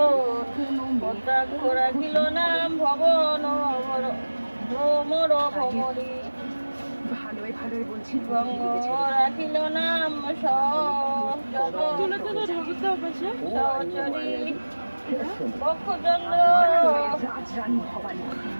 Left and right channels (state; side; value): inverted; both; correlation -1.00